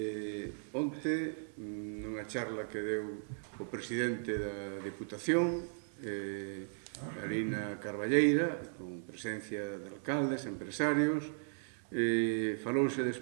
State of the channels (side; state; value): left; silent; digital silence